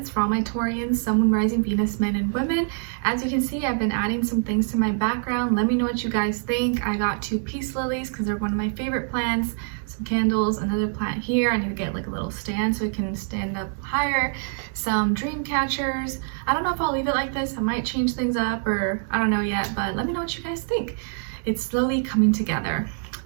for all my Taurians, Sun, Moon, Rising, Venus, men and women. As you can see, I've been adding some things to my background. Let me know what you guys think. I got 2 peace lilies because they're one of my favorite plants. Some candles, another plant here. I need to get like a little stand so it can stand up higher. Some dream catchers. I don't know if I'll leave it like this. I might change things up, or I don't know yet, but let me know what you guys think. It's slowly coming together.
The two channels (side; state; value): left; silent; 58 dB below the other